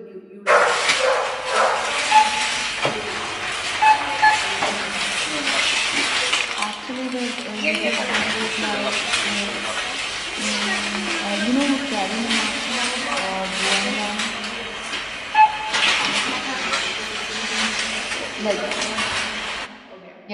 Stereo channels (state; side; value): identical; both; correlation 1.00